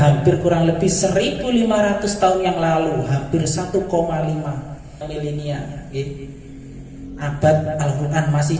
kurang lebih 1500 tahun yang lalu, hampir 1,5 milenia, abad Al-Qur'an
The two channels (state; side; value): identical; both; correlation 1.00